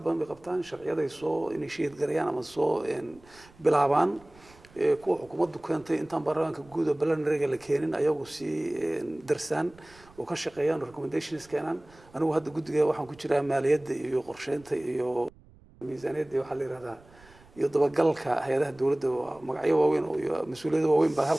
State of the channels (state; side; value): noise; right; rumble, 26 dB below the sound